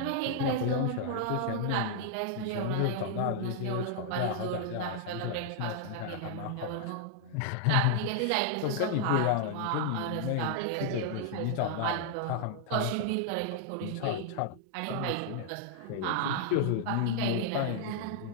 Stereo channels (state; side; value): different; both; correlation -0.01